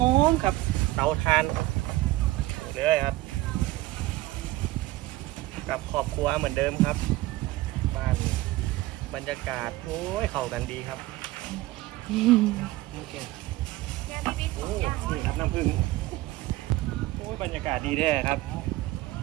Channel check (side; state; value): left; quieter; 17.9 dB